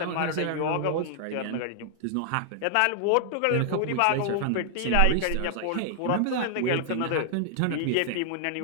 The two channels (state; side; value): different; both; correlation 0.00